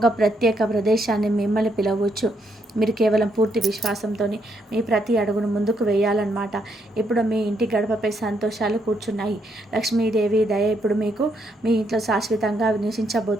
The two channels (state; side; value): normal; both; correlation 0.75